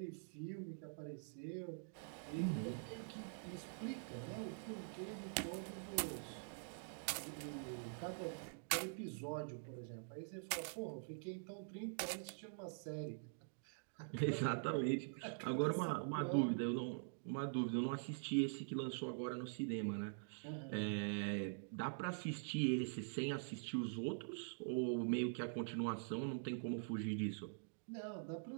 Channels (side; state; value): left; silent; digital silence